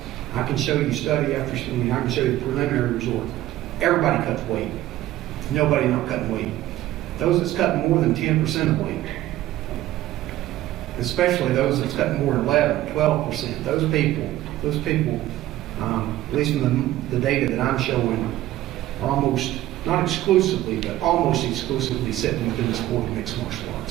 I can show you study after study. I can show you the preliminary results. Everybody cuts weight. Nobody not cutting weight. Those that's cutting more than 10% of weight, especially those that's cutting more than 11, 12%. Those people, at least from the data that I'm showing, are almost, not exclusively, but almost exclusively sitting within the sport of mixed martial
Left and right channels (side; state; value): left; quieter; 14.9 dB